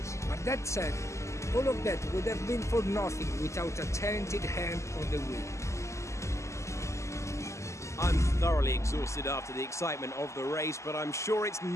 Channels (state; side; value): late; right; 0.14 ms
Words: But that said, all of that would have been for nothing without a talented hand on the wheel. I'm thoroughly exhausted after the excitement of the race, but I'm sure it's